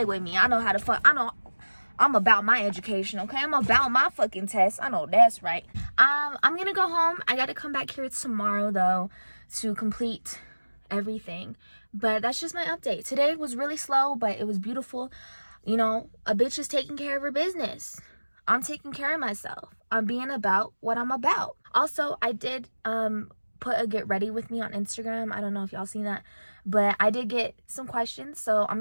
with me. I know how to fuck. I'm about my education, okay? I'm about my fucking test. I know that's right. I'm gonna go home. I gotta come back here tomorrow though to complete everything. But that's just my update. Today was really slow, but it was beautiful. You know, a bitch is taking care of her business. I'm taking care of myself. I'm being about what I'm about. Also, I did put a get ready with me on Instagram. I don't know if y'all seen that, but I did get some questions, so I'm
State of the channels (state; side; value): inverted; both; correlation -1.00